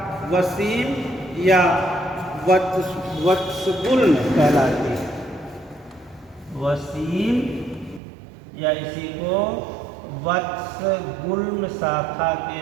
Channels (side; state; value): left; drops out; at 8.0 s